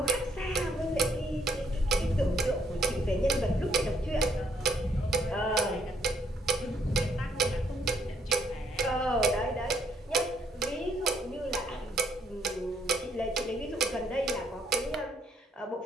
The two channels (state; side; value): normal; both; correlation 0.69